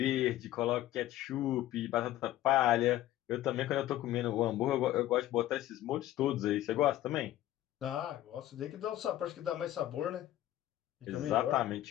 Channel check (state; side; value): quieter; right; 14.0 dB